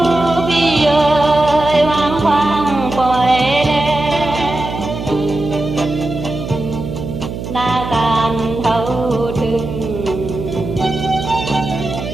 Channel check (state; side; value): noise; right; hum, 7 dB below the sound